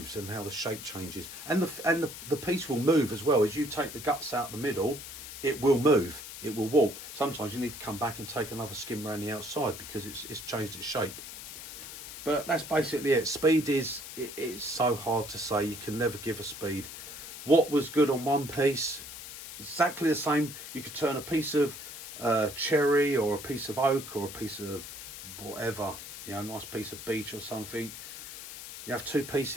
and how the shape changes, and the piece will move as well. As you take the guts out the middle, it will move, it will warp. Sometimes you need to come back and take another skim around the outside because it's changed its shape. But that's basically it. Speed is it's so hard to say. You can never give a speed. What was good on one piece, exactly the same. You could turn a piece of cherry or a piece of oak or a piece of whatever, you know, nice piece of beech or something, you have 2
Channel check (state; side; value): noise; left; hiss, 11 dB below the sound